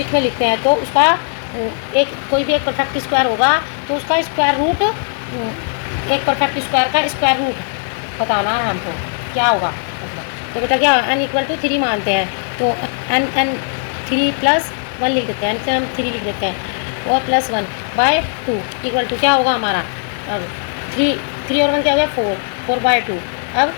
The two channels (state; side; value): silent; right; 64 dB below the other